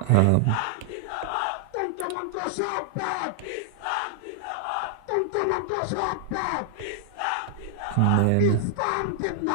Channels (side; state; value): both; different; correlation -0.01